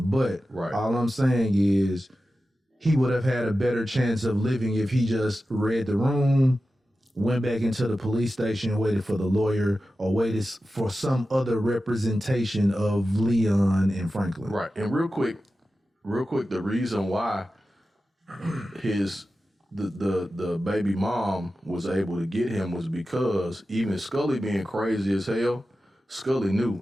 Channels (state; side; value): normal; both; correlation 0.93